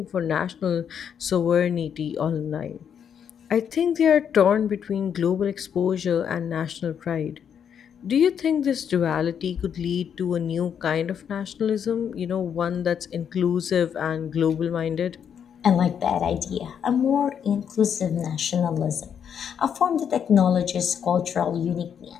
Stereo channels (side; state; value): right; quieter; 8.0 dB